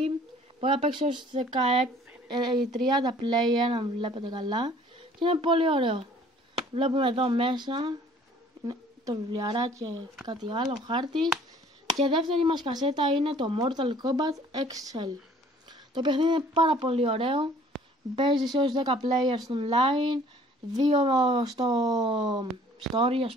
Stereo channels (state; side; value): normal; both; correlation 0.54